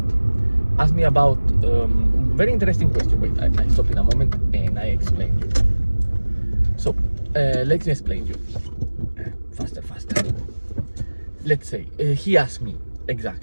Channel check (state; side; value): inverted; both; correlation -1.00